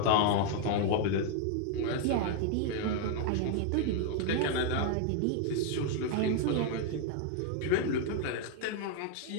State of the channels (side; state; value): both; different; correlation 0.00